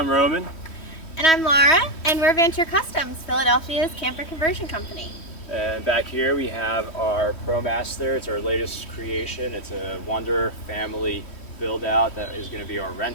Roman. And I'm Laura, and we're Vanture Customs, Philadelphia's camper conversion company. And back here we have our ProMaster. It's our latest creation. It's a Wanderer family build out that is going to be our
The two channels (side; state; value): right; late; 3.1 ms